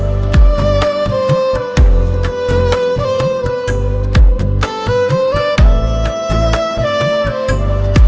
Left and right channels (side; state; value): both; identical; correlation 1.00